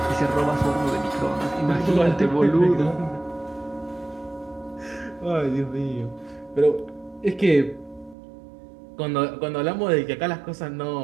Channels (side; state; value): left; drops out; at 8.2 s